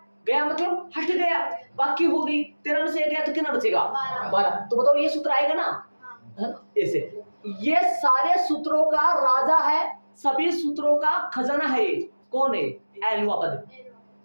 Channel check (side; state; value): both; inverted; correlation -1.00